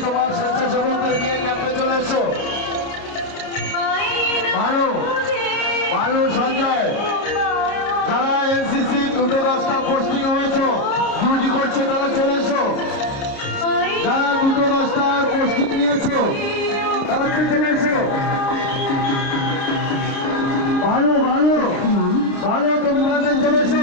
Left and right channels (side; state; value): right; late; 30 ms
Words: তোমার স্বেচ্ছাসেবকদের নিয়ে ক্যাম্পে চলে এসো। ভালো ভালো সঞ্জয়, যারা এনসিসি 2-10টা পোস্টিং হয়েছে, ডিউটি করছে, তারা চলে এসো। যারা 2-10টা পোস্টিং নিয়েছো তারা চলে এসো। ভালো ভালো ভালো, তোমরা চলে